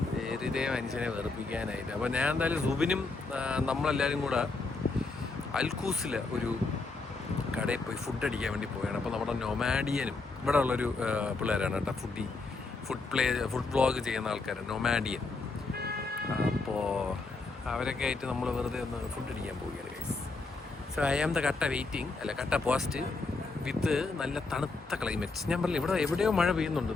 വെറുതെ മനുഷ്യനെ വെറുപ്പിക്കാനായിട്ട്. അപ്പോൾ ഞാൻ എന്തായാലും സുബിനും നമ്മളെല്ലാവരും കൂടെ അൽക്കൂസിലെ ഒരു കടയിൽ പോയി ഫുഡ് അടിക്കാൻ വേണ്ടി പോവുകയാണ്. അപ്പോൾ നമ്മുടെ നൊമാഡിയനും ഇവിടെ ഉള്ളൊരു പിള്ളേരാണ് കേട്ടോ, ഫുഡ് വ്ളോഗ് ചെയ്യുന്ന ആൾക്കാരാണ് നൊമാഡിയൻ. അപ്പോൾ അവരൊക്കെ ആയിട്ട് നമ്മൾ വെറുതെ ഒന്ന് ഫുഡ് അടിക്കാൻ പോവുകയാണ് guys. So I am the കട്ട വെയിറ്റിംഗ്, അല്ല കട്ട പോസ്റ്റ് വിത്ത് നല്ല തണുത്ത ക്ലൈമറ്റ്. ഞാൻ പറഞ്ഞില്ല ഇവിടെ എവിടെയോ മഴ പെയ്യുന്നുണ്ട്,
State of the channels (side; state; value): right; quieter; 3.8 dB